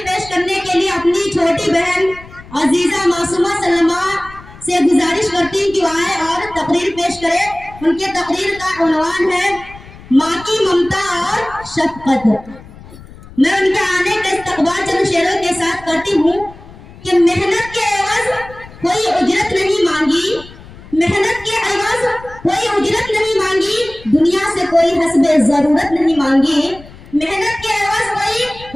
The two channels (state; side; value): noise; left; rumble, 19 dB below the sound